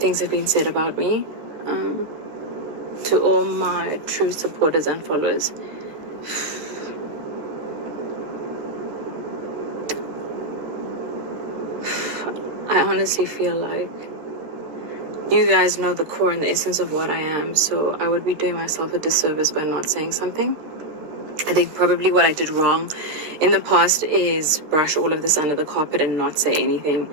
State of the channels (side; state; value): left; late; 13 ms